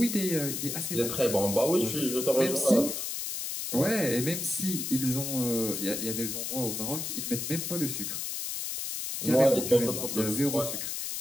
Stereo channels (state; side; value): noise; left; hiss, 4 dB below the sound